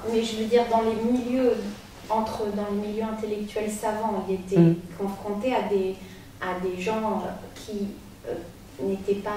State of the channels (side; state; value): both; identical; correlation 1.00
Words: mais je veux dire dans les milieux intellectuels savants, ils étaient confrontés à des gens qui n'étaient